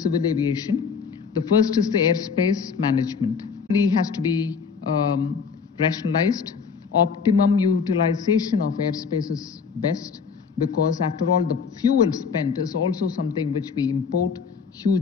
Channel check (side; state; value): right; quieter; 5.8 dB